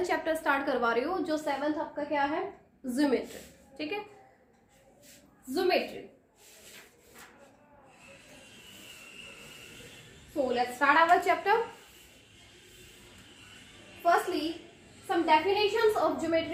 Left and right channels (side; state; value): both; identical; correlation 1.00